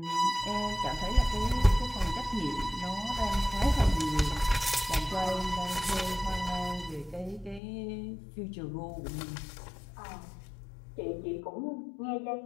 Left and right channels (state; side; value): drops out; right; at 7.6 s